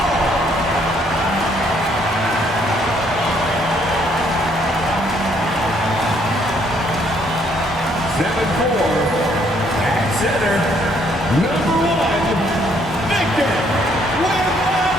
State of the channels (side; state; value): both; normal; correlation 0.67